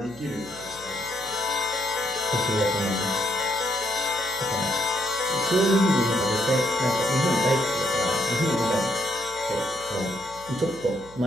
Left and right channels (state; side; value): noise; left; hum, 23 dB below the sound